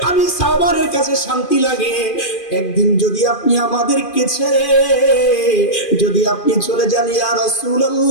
আমি সাওবানের কাছে শান্তি লাগে। একদিন যদি আপনি আমাদেরকে ছেড়ে যদি আপনি চলে যান, ইয়া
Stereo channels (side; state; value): right; late; 2.4 ms